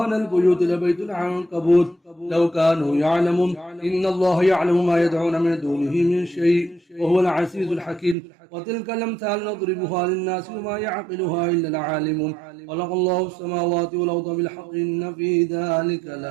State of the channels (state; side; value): drops out; left; at 8.2 s